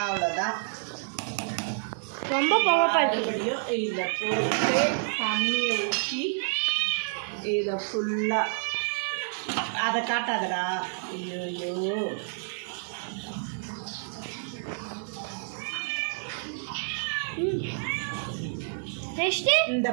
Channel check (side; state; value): left; silent; 59 dB below the other